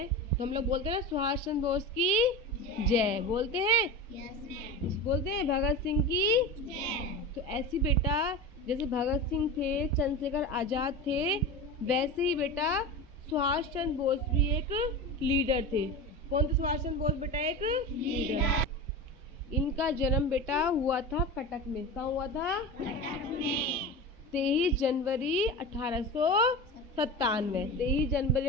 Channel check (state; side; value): normal; both; correlation 0.27